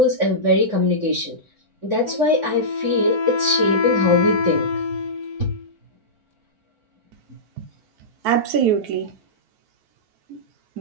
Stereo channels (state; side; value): late; left; 4.5 ms